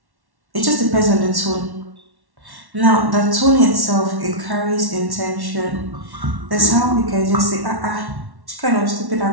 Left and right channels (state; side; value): late; left; 1.1 ms